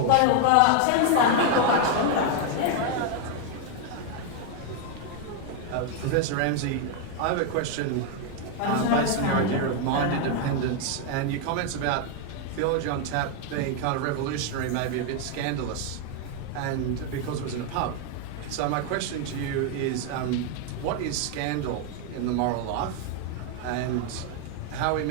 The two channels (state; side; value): different; both; correlation 0.01